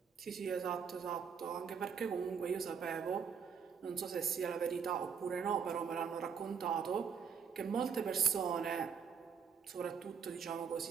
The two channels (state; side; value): quieter; left; 6.6 dB